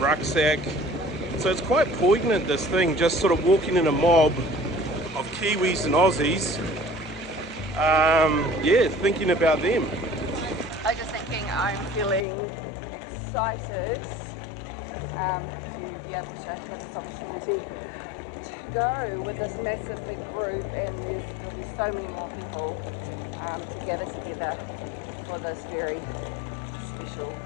So it's quite poignant, this thing, just sort of walking in a mob of Kiwis and Aussies, yeah, thinking about them. I was just thinking, I'm feeling excited to be able to have this opportunity to go with this massive big group, and there'll be so many more people to gather together for this very special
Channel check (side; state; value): right; drops out; at 12.2 s